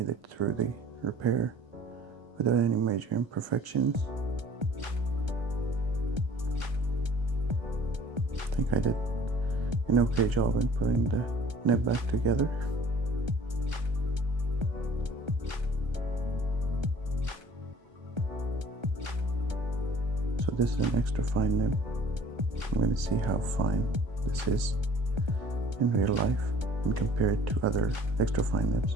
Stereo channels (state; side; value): late; left; 1.3 ms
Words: it through the repair without any major imperfections. I think I did an okay job in putting the nib back together. So this is an extra fine nib. I'm going to see how fine this is in real life and compare it to other extra fine